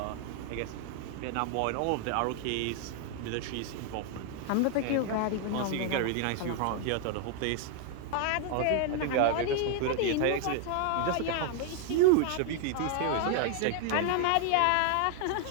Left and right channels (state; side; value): different; both; correlation 0.00